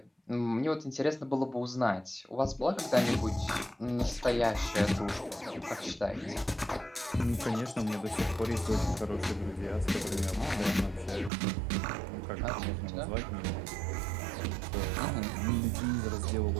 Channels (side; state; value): left; drops out; at 11.3 s